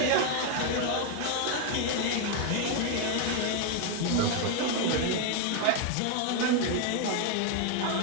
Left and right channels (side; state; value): both; different; correlation 0.00